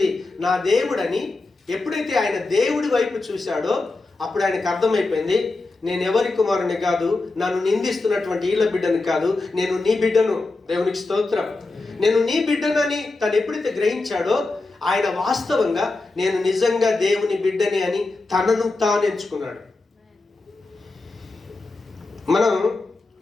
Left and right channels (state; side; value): quieter; right; 3.4 dB